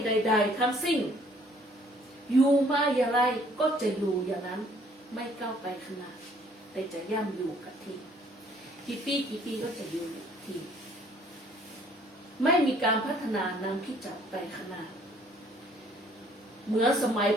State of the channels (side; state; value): both; normal; correlation 0.60